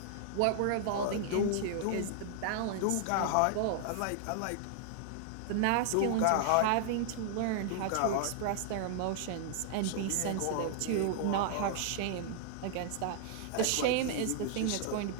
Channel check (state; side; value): different; both; correlation -0.01